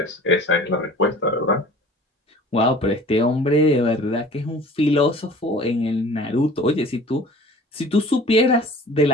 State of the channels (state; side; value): normal; both; correlation 0.45